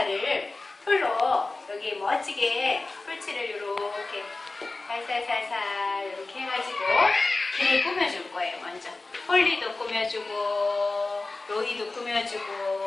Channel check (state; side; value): quieter; right; 3.4 dB